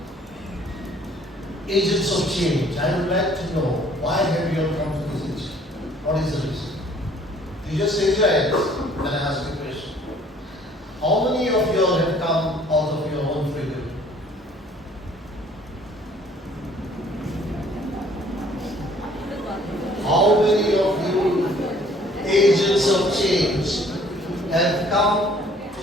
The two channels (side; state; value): both; normal; correlation 0.57